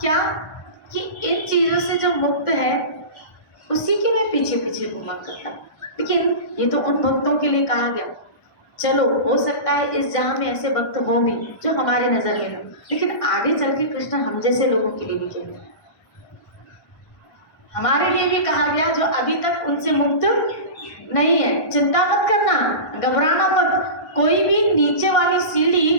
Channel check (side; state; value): right; late; 1.5 ms